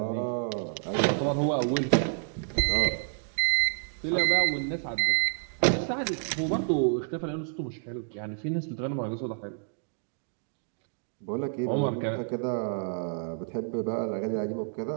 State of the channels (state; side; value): silent; left; digital silence